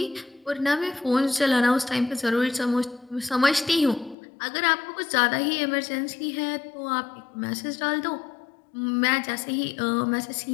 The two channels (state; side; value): drops out; right; at 4.2 s